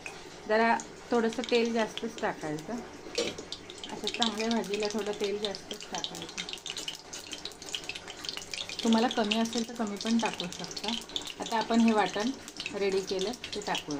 जरा थोडंसं तेल जास्तच टाकायचं. असं चांगल्या भाजीला थोडं तेल जास्तच टाकायचं. तुम्हाला कमी असेल तर कमी पण टाकू शकता. आता आपण हे वाटण रेडी केलं ते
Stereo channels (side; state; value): both; identical; correlation 1.00